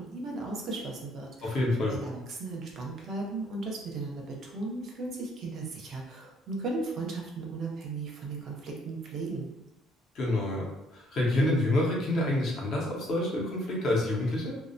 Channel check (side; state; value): both; normal; correlation 0.65